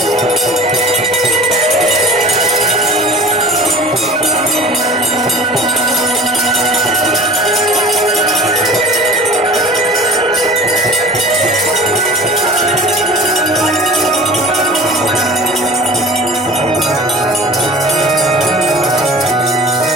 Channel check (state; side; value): normal; both; correlation 0.41